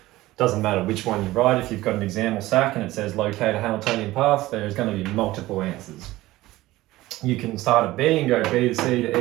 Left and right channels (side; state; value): left; quieter; 17.5 dB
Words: Doesn't matter which one you write. If you've got an exam or SAC and it says locate a Hamiltonian path, there's going to be multiple answers. You can start at B and go B to C to